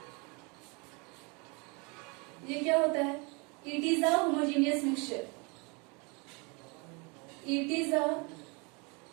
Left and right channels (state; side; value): quieter; left; 30.5 dB